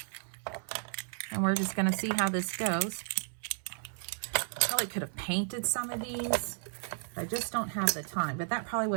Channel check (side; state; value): left; silent; 56 dB below the other